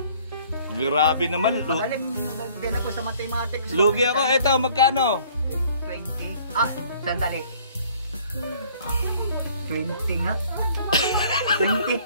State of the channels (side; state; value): both; inverted; correlation -0.56